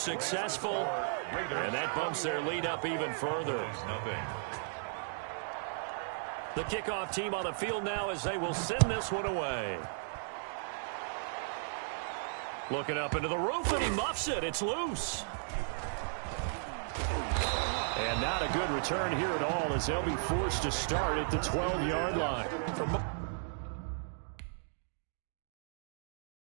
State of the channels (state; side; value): silent; left; digital silence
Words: and that bumps their lead up even further. The kickoff team on the field now as they will send this one away. Looking up into the roof, and he muffs it. It's loose. And not a good return here at all as they'll be forced to start at the 12-yard line.